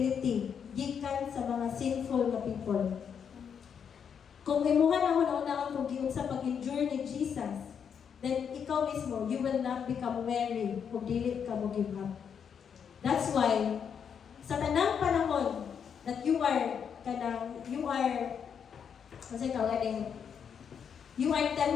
gikan sa mga sinful na people. Kung imuha na hunahunaan kung giunsa pag-endure ni Jesus, then ikaw mismo, you will not become weary kung dili ka mo give up. That's why, sa tanang panahon that you are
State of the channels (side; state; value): right; quieter; 7.4 dB